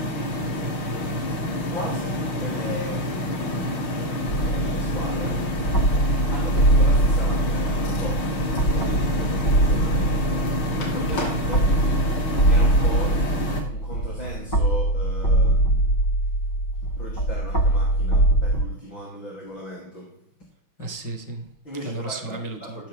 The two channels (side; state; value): right; late; 6.3 ms